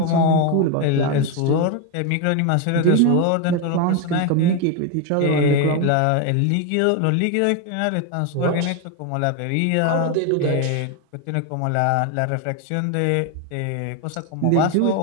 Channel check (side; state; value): both; different; correlation 0.02